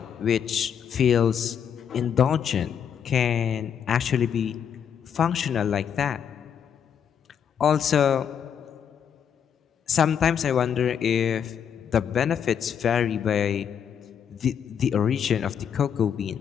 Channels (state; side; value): quieter; right; 8.1 dB